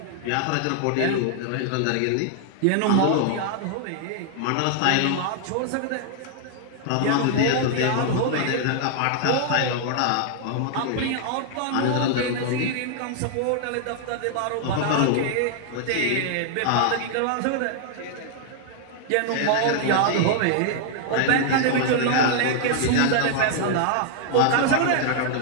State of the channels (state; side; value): different; both; correlation 0.00